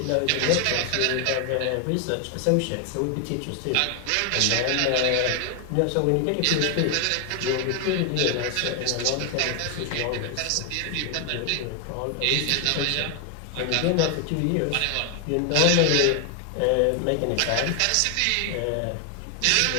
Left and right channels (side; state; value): both; different; correlation 0.00